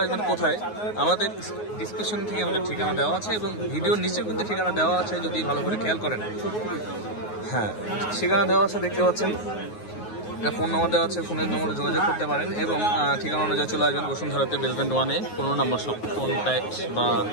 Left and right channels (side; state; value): right; late; 9.5 ms